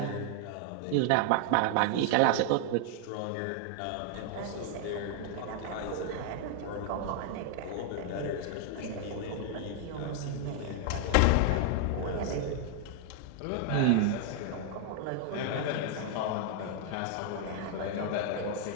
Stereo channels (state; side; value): different; both; correlation 0.00